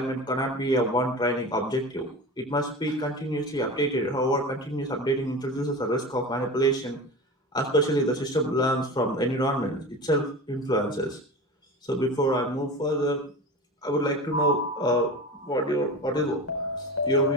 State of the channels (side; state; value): both; normal; correlation 0.31